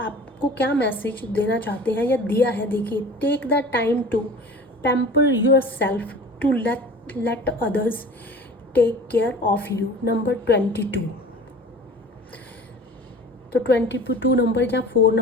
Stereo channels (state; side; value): normal; both; correlation 0.41